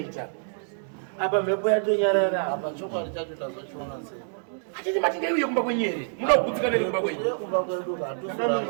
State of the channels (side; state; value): left; silent; digital silence